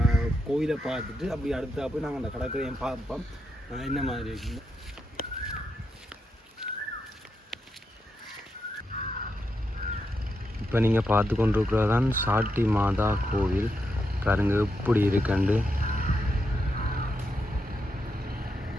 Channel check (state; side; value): normal; both; correlation 0.84